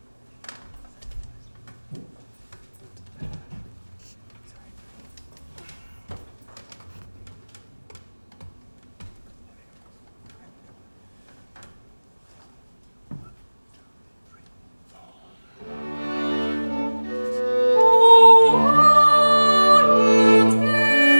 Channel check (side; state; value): both; inverted; correlation -1.00